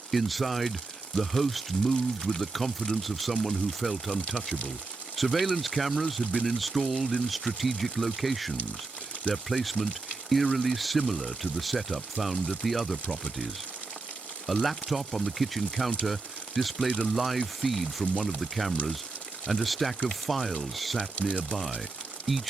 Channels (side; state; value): left; quieter; 3.7 dB